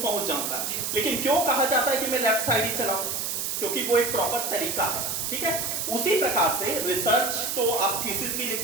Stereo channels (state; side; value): noise; right; hiss, 2 dB below the sound